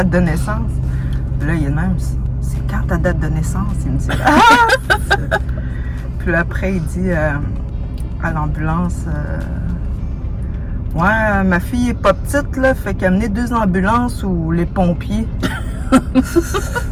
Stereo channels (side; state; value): both; identical; correlation 1.00